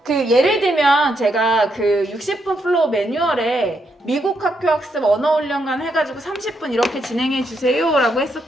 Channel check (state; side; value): normal; both; correlation 0.79